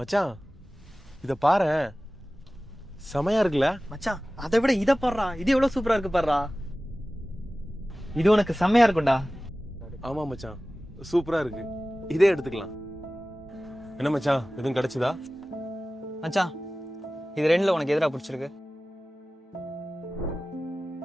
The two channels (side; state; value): both; normal; correlation 0.97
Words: இத பாரு, செமையா இருக்குல்ல மச்சான்? அதை விட இத பாடுறா, இது எவ்வளவு சூப்பரா இருக்கு பாடுறா. இது உனக்கு செம்மையா இருக்கும்டா. ஆமா மச்சான், சூப்பரா இருக்கு. இதே எடுத்துக்கலாம். என்ன மச்சான், எதுவும் கிடைச்சதா? மச்சான் இது ரெண்டுல உனக்கு எதிரா பிடிச்சிருக்கு?